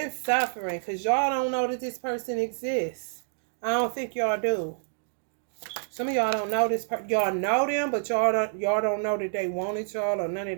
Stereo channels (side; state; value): left; silent; digital silence